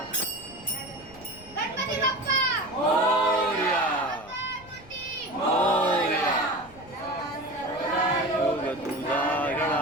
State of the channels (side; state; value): left; noise; rumble, 22 dB below the sound